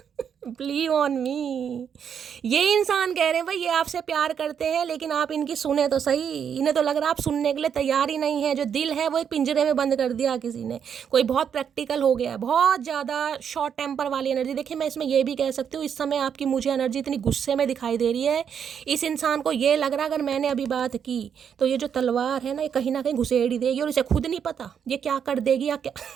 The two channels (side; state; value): left; quieter; 7.8 dB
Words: believe on me. ये इंसान कह रहे हैं भाई ये आपसे प्यार करते हैं, लेकिन आप इनकी सुने तो सही। इन्हें तो लग रहा है आप सुनने के लिए तैयार ही नहीं है। जो दिल है वो एक पिंजरे में बंद कर दिया किसी ने। कोई बहुत प्रैक्टिकल हो गया है, बहुत ज़्यादा शॉर्ट टेम्पर वाली एनर्जी। देखिए मैं इसमें ये भी कह सकती हूँ, इस समय आपकी मुझे एनर्जी इतनी गुस्से में दिखाई दे रही है। इस इंसान को ये लग रहा है अगर मैंने अभी बात की तो ये जो तलवार है ना, ये कहीं ना कहीं घुसेड़ ही देगी, और इसे खुद नहीं पता ये क्या कर देगी या क्या